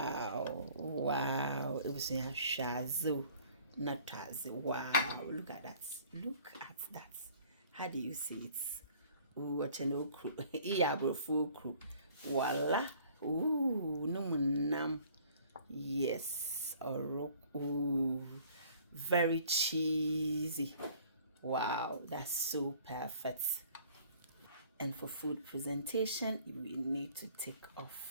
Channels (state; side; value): inverted; both; correlation -0.55